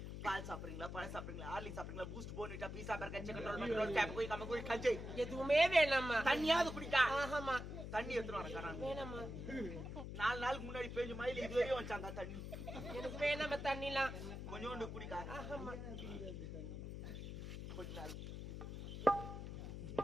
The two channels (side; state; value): left; noise; hum, 7 dB below the sound